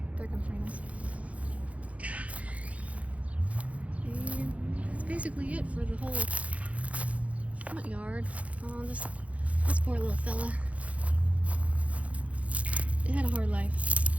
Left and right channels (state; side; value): late; left; 0.065 ms